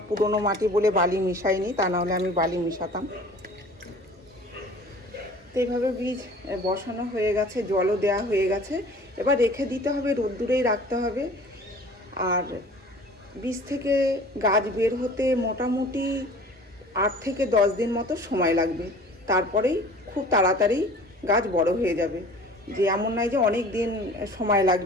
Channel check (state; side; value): normal; both; correlation 0.46